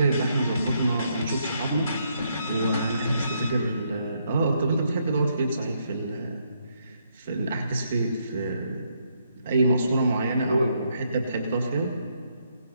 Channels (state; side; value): inverted; both; correlation -0.75